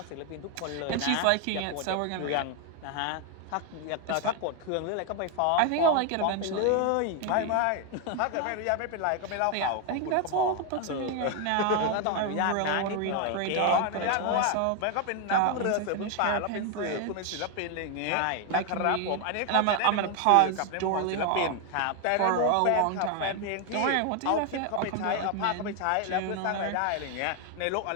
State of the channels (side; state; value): both; different; correlation 0.01